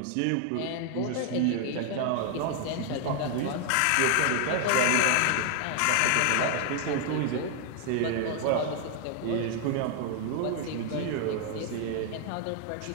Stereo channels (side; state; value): both; different; correlation 0.00